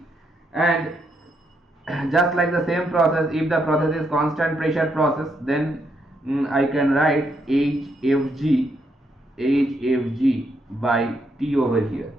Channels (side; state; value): both; normal; correlation 0.77